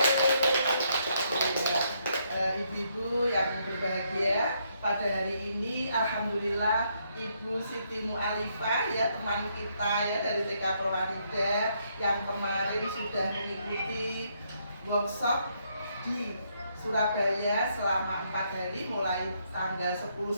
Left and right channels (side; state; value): both; inverted; correlation -0.74